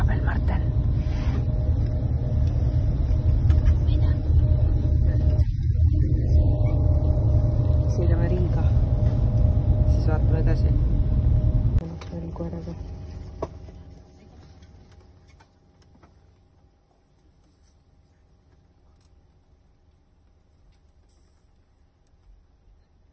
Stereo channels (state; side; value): identical; both; correlation 1.00